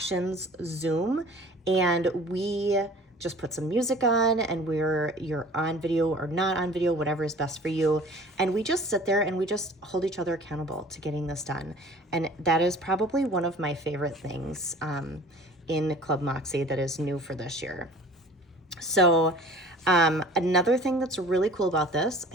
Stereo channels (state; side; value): normal; both; correlation 0.46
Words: Zoom. And we just put some music on, and you're on video or not on video, whatever is best for you. And we just sit there and we just hold each other accountable to getting this done. And that is probably one of my favorite things in Club Mäksē that is new for this year. So another thing that's really cool about this,